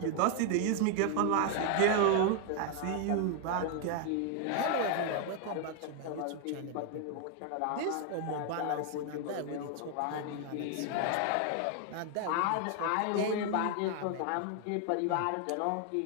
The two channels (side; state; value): both; different; correlation 0.00